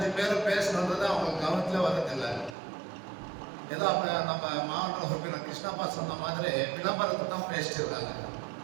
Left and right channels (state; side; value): drops out; left; at 2.6 s